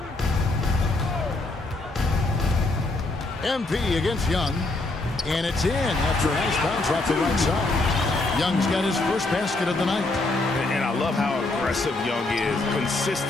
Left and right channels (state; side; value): quieter; right; 3.0 dB